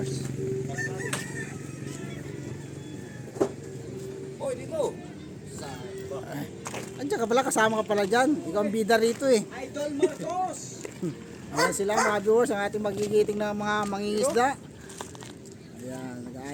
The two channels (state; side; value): identical; both; correlation 1.00